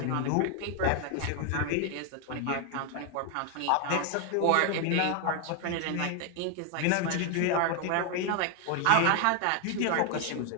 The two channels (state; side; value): different; both; correlation 0.01